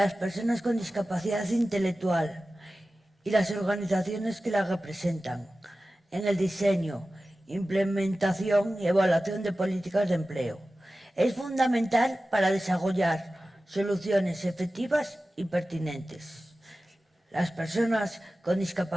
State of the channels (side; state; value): both; normal; correlation 0.95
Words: personas con discapacidad intelectual y las organizaciones que las representan en el diseño, implementación y evaluación de políticas de empleo. Es fundamental para desarrollar soluciones efectivas y pertinentes. Las personas con